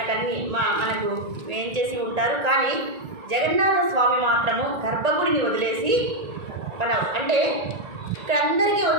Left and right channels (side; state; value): left; late; 1.8 ms